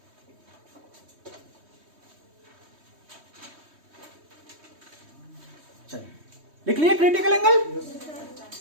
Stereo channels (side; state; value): left; late; 3.2 ms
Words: चलिए लिख लिए क्रिटिकल एंगल।